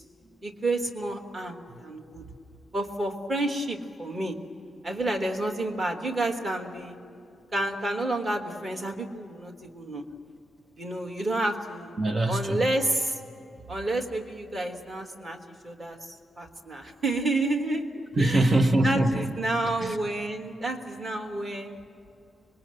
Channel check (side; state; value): both; normal; correlation 0.84